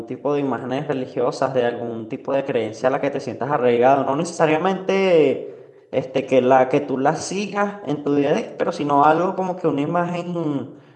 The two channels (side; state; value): both; identical; correlation 1.00